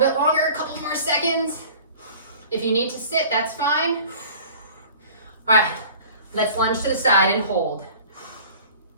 longer, a couple more seconds. If you need to sit, that's fine. All right, let's lunge to the side and hold.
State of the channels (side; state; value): both; inverted; correlation -0.46